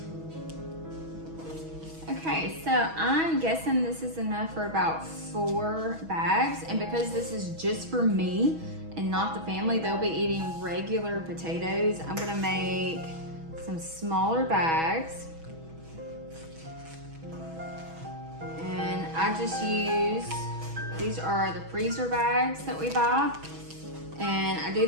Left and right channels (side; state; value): left; late; 6.2 ms